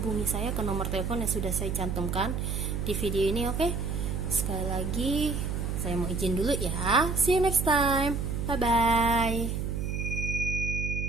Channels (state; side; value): noise; right; hum, 2 dB below the sound